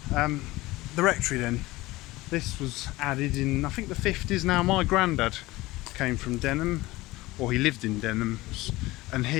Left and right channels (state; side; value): quieter; right; 19.4 dB